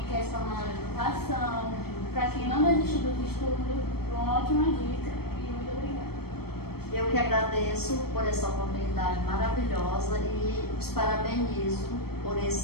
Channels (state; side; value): late; right; 0.96 ms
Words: quer se formar na educação, para quem não desistiu dos estudos. Uma ótima dica. Eu que agradeço por essa oportunidade maravilhosa e os parabenizo por